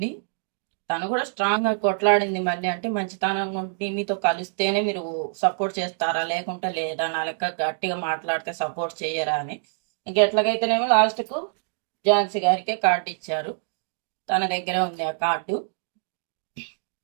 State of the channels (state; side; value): silent; left; 60 dB below the other